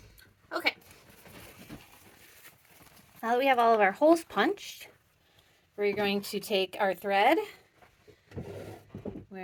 Okay. Now that we have all of our holes punched, we're going to take our thread,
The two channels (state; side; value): identical; both; correlation 1.00